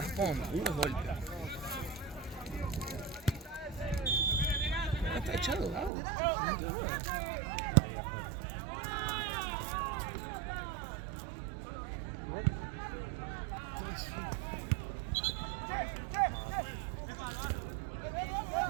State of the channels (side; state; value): left; drops out; at 5.9 s